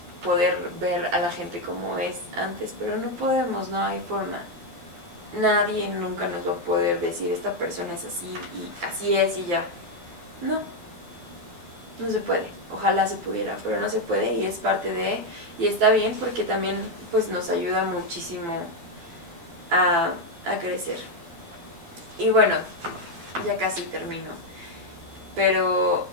poder ver a la gente como es antes, pero no podemos, no hay forma. Nadie nunca nos va a poder decir esta persona es así y así es y ya. No, no se puede. Ojalá se pudiera, pero no se puede y es parte de, y está bien porque también pues nos ayuda muchísimo a crecer. Y bueno, ya casi termino, pero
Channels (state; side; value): late; left; 12 ms